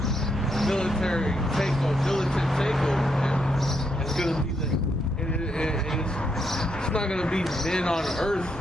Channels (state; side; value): normal; both; correlation 0.78